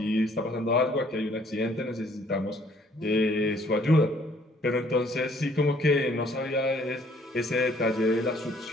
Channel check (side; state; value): both; normal; correlation 0.61